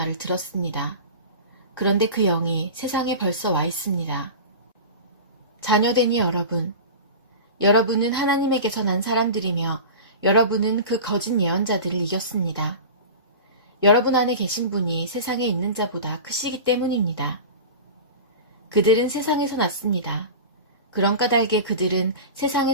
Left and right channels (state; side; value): inverted; both; correlation -0.31